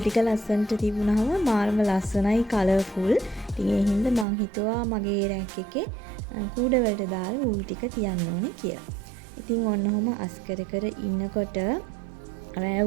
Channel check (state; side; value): drops out; left; at 4.2 s